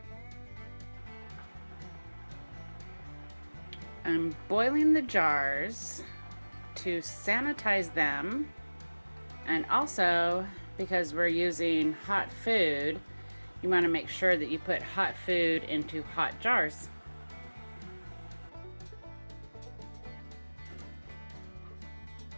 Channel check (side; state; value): both; inverted; correlation -1.00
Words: I'm boiling the jars to sanitize them, and also because we're using hot food, you want to make sure that you put hot food into hot jars.